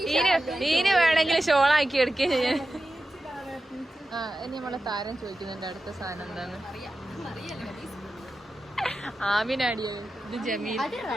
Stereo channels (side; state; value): both; normal; correlation 0.92